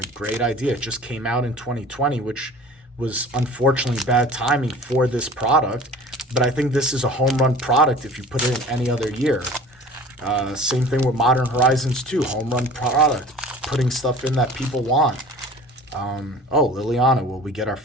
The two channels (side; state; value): both; normal; correlation 0.43